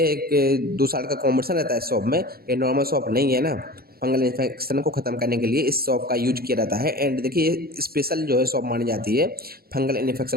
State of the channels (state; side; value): late; left; 0.44 ms